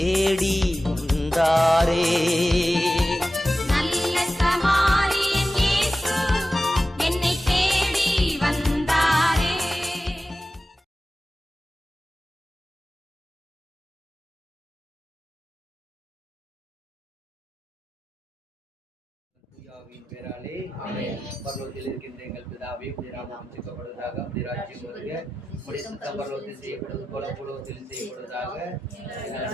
வந்தாரே. நல்ல சமாரியன் இயேசு என்னை தேடி வந்தாரே. தூயாவின் பேராலே பரலோகத்தில் இருக்கின்ற எங்கள் பிதாவே, உம்முடைய நாமம் உச்சரிக்கப்படுவதாக, உம்முடைய ராஜ்யம் வருக, உம்முடைய சித்தம் பரலோகத்தில் செய்யப்படுவது போல பூலோகத்தில் செய்யப்படுவதாக.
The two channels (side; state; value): both; normal; correlation 0.94